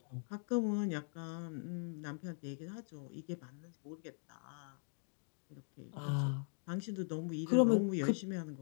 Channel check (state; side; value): silent; right; 51 dB below the other